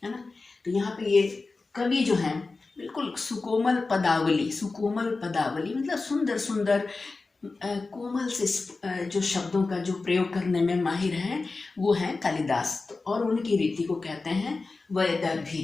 है ना। तो यहाँ पे ये कवि जो हैं बिल्कुल सुकोमल पदावली, सुकोमल पदावली मतलब सुंदर सुंदर कोमल से जो शब्दों का जो प्रयोग करने में माहिर हैं, वो हैं कालिदास। तो और उनकी रीति को कहते हैं वैदर्भी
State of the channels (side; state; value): right; quieter; 3.8 dB